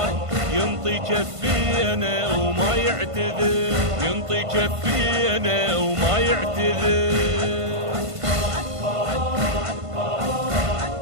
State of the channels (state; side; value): late; left; 1.5 ms